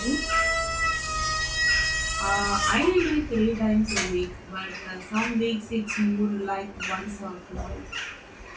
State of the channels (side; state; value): both; identical; correlation 1.00